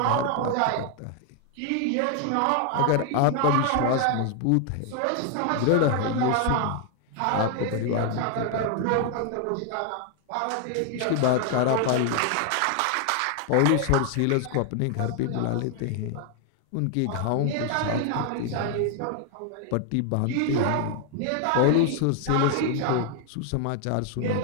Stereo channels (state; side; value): different; both; correlation 0.00